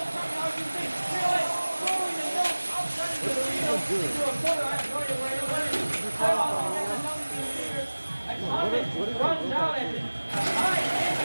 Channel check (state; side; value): inverted; both; correlation -1.00